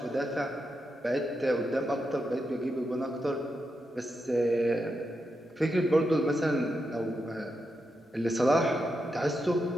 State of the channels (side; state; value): both; normal; correlation 0.86